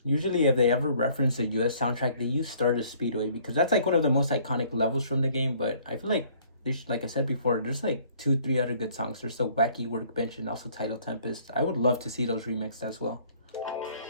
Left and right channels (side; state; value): both; inverted; correlation -0.59